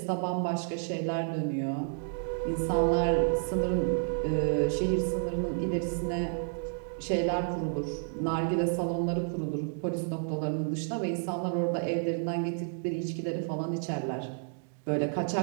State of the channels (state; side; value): silent; left; digital silence